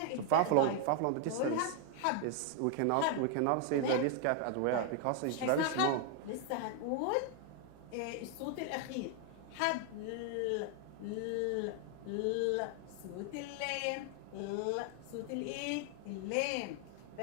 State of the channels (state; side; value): different; both; correlation 0.00